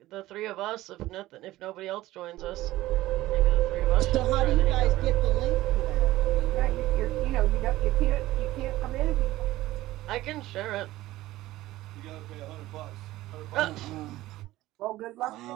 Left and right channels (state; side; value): quieter; left; 16.6 dB